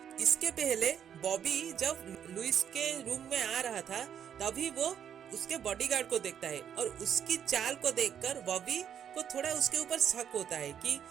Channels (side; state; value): left; quieter; 8.9 dB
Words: इसके पहले बॉबी जब लुइस के रूम में आ रहा था तभी वो उसके बॉडीगार्ड को देखता है और उसकी चाल को देखकर बॉबी को थोड़ा उसके ऊपर शक होता है कि